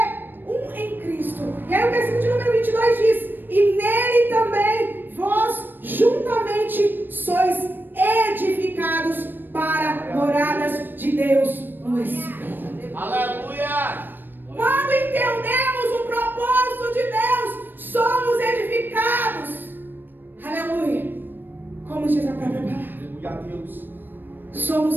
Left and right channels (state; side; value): late; left; 0.093 ms